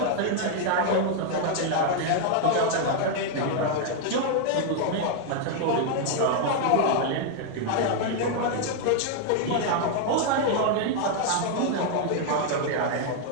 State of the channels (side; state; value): both; different; correlation 0.00